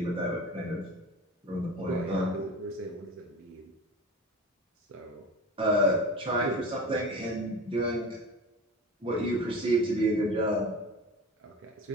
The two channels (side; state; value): both; normal; correlation 0.33